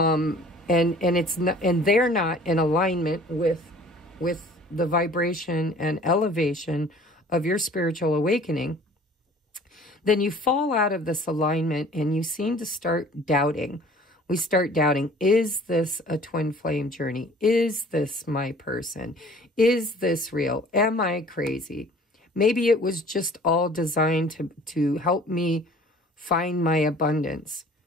it's not, and they're not in alignment with the vibration and elevation of your spiritual awakening, then you fall out of this alignment and you seem to start doubting. We start doubting, is this a twin flame journey? Is this my person? Is this real? Am I crazy? Maybe it was just all designed to help me find my abundance,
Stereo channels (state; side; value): normal; both; correlation 0.50